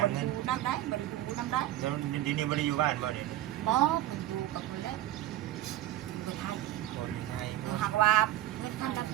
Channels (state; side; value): quieter; left; 14.0 dB